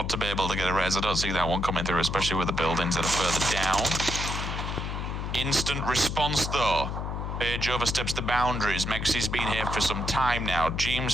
to be able to get a res. I don't see that one coming through, especially with the buildings that are further down. Instant response, though. Page oversteps the boundaries. Mexi's been here for some time now. Jeems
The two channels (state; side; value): noise; left; hum, 4 dB below the sound